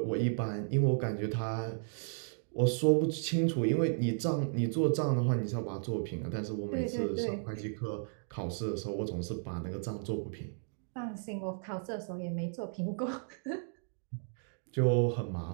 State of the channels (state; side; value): silent; left; digital silence